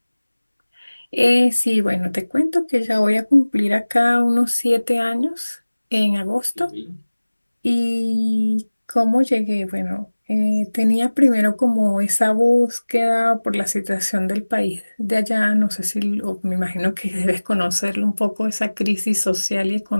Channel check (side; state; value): both; inverted; correlation -1.00